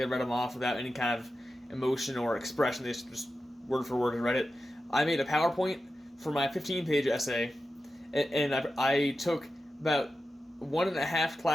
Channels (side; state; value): both; normal; correlation 0.92